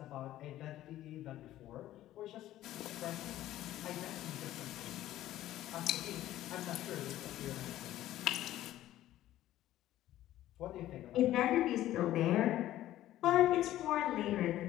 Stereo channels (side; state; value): right; quieter; 13.9 dB